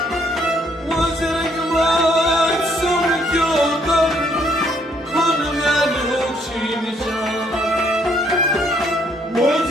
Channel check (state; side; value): normal; both; correlation 0.68